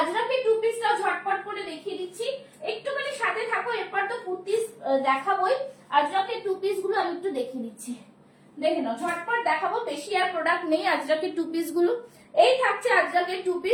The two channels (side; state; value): both; identical; correlation 1.00